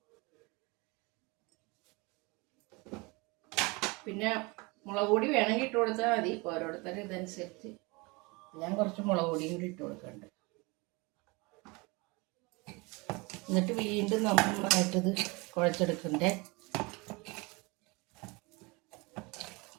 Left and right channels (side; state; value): left; quieter; 26.6 dB